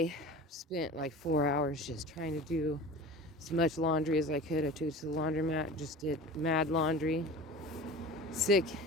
spent like 4 hours just trying to do as much laundry as I could. I took it to the laundromat, just did mad laundry. Sick,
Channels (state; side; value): normal; both; correlation 0.37